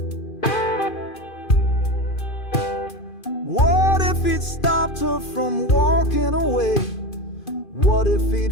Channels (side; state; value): right; late; 2.5 ms